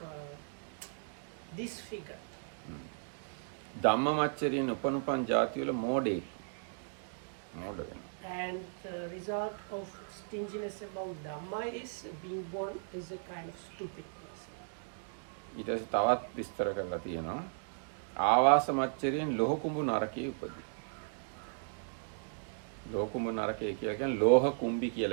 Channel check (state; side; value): silent; left; digital silence